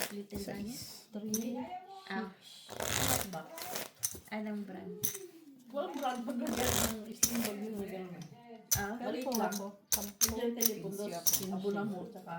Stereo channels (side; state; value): both; identical; correlation 1.00